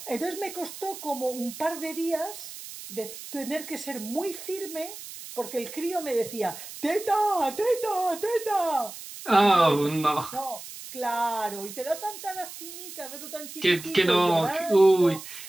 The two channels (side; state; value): right; noise; hiss, 12 dB below the sound